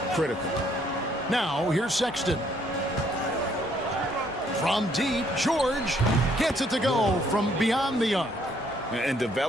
critical. Now, here's Sexton. From deep, George gets it to go from beyond the arc. And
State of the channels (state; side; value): normal; both; correlation 0.67